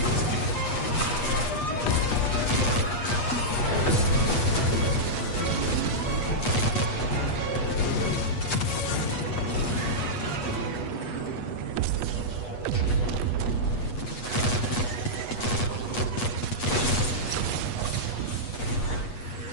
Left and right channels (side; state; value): right; late; 8.3 ms